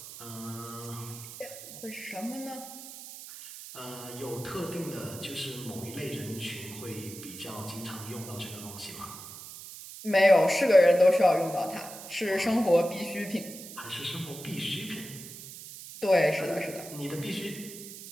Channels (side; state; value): right; noise; hiss, 13 dB below the sound